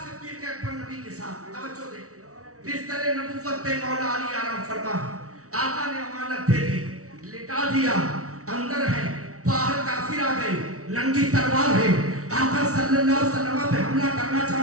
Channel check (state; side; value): late; left; 0.65 ms